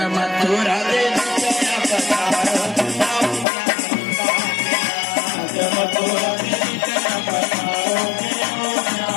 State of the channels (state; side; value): drops out; right; at 3.5 s